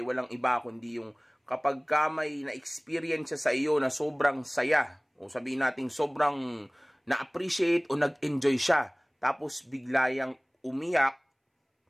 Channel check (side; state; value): both; identical; correlation 1.00